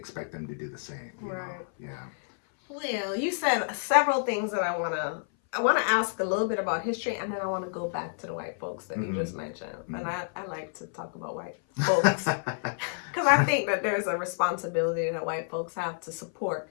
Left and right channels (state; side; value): silent; right; 57 dB below the other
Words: them to do the same. You know? Yeah. Well, you said several things that I want to ask a little bit about history, and then I want to go back to the white folks that you just mentioned. And I like to talk about white folks because I think that there's a responsibility that white folks have to support